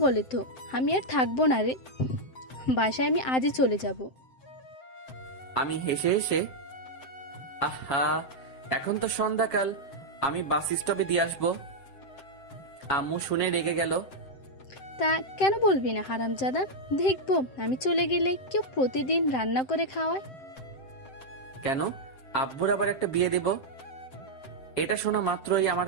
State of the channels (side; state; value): right; late; 7.7 ms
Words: বলে তো। আমি আর থাকবো না রে, বাসায় আমি আজই চলে যাব। আমি হেসে হেসে, আহা এখন তো সন্ধ্যাকাল, আমি বাস স্টপে দিয়ে আসবো। আম্মু শুনে রেগে গেল। তা কেন বলবি না হারামজাদা? দেখবো আমি চলে গেলে কেউ প্রতিদিন রান্না করে খাওয়ায়। কেন? আব্বুর আবার একটা বিয়ে দেব? এটা শোনা মাত্রই আমার